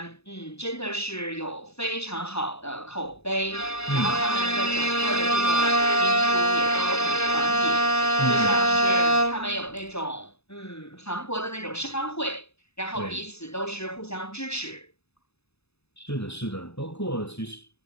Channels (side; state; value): right; late; 0.79 ms